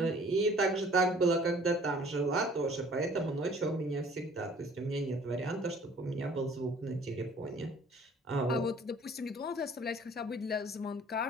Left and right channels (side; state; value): both; normal; correlation 0.53